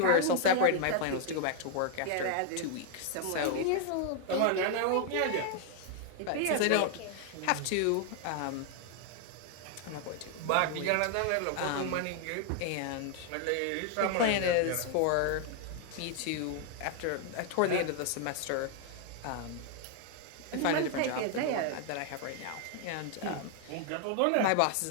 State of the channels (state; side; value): different; both; correlation 0.00